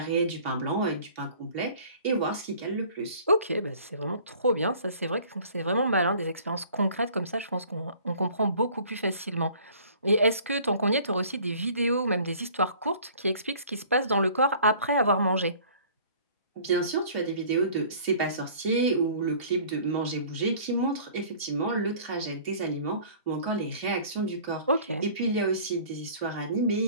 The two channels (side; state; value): both; inverted; correlation -0.50